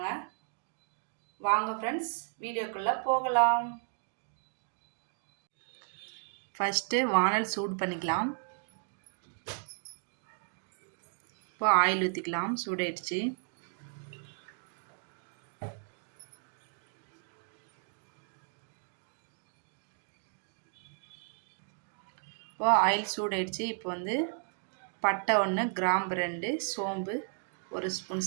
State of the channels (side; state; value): left; silent; digital silence